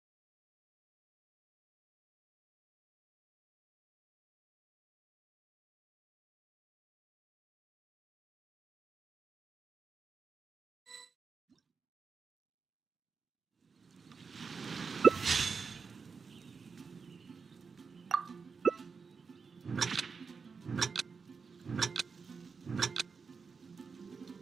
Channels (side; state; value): left; quieter; 5.3 dB